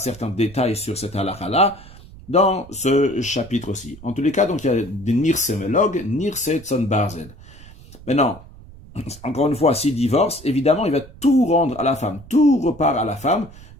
détails sur cette halakha-là dans ce chapitre aussi. En tous les cas, donc il y a des nirsemelog, nirsetson barzel. Maintenant, encore une fois, s'il divorce, évidemment, il va tout rendre à la femme, tout repart à la femme,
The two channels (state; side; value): noise; right; rumble, 19 dB below the sound